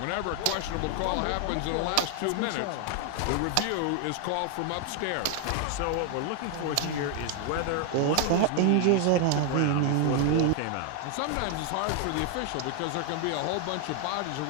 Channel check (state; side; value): different; both; correlation 0.00